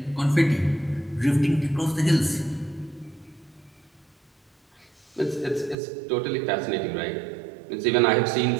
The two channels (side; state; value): left; drops out; at 5.8 s